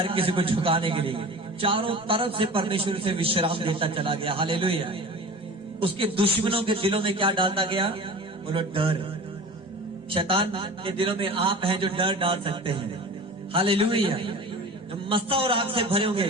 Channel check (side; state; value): both; normal; correlation 0.36